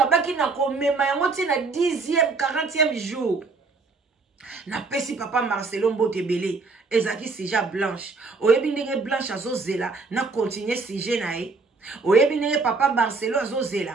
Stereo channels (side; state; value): left; quieter; 4.1 dB